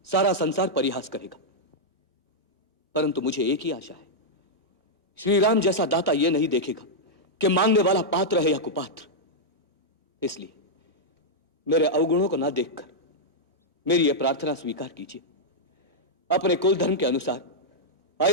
सारा संसार परिहास करेगा, परंतु मुझे एक ही आशा है, श्री राम जैसा दाता यह नहीं देखेगा कि मांगने वाला पात्र है या कुपात्र। इसलिए मेरे अवगुणों को ना देखकर मेरी यह प्रार्थना स्वीकार कीजिए। अपने कुल धर्म के अनुसार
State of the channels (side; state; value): both; normal; correlation -0.06